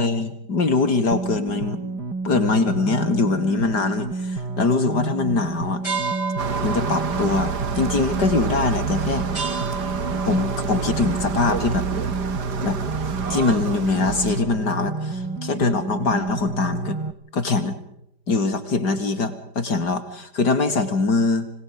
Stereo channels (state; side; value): late; right; 5.0 ms